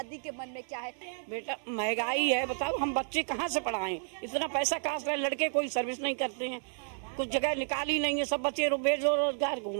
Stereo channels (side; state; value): left; silent; digital silence